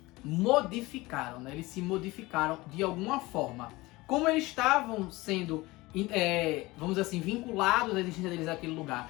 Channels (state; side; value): quieter; right; 21.0 dB